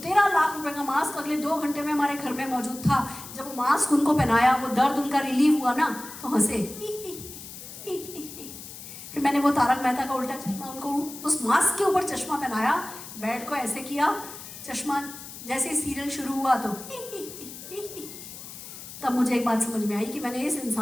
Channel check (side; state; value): left; noise; hiss, 13 dB below the sound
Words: लाख रुपए का मास्क अगले 2 घंटे में हमारे घर में मौजूद था। जब वो मास्क उनको पहनाया, वो दर्द उनका रिलीव हुआ ना, तो हंसे। फिर मैंने वो तारक मेहता का उल्टा चश्मा उनको उस मास्क के ऊपर चश्मा पहनाया, बेड को ऐसे किया, चश्मा जैसे सीरियल शुरू हुआ तो तब मुझे एक बात समझ में आई कि मैंने इस